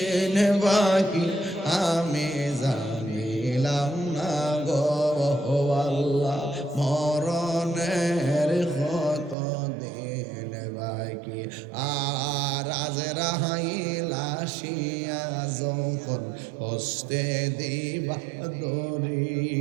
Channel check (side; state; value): left; drops out; at 9.3 s